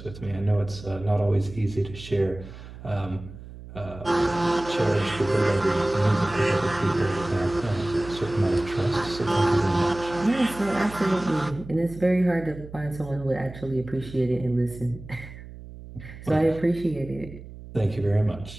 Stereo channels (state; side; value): noise; right; hum, 15 dB below the sound